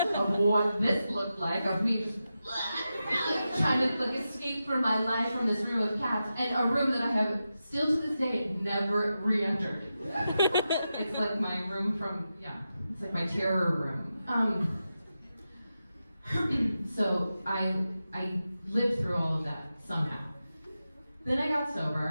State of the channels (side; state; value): both; inverted; correlation -0.90